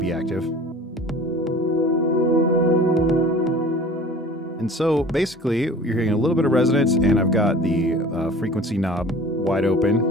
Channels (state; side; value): normal; both; correlation 0.43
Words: active. And so basically, you're hearing a little bit of resonance, and I've got the frequency knob wide